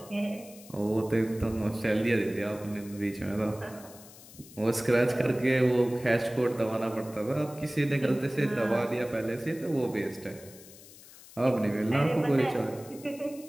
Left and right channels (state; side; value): noise; left; hiss, 20 dB below the sound